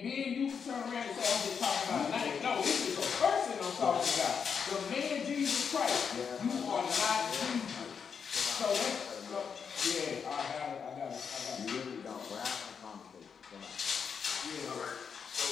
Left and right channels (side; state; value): right; quieter; 6.5 dB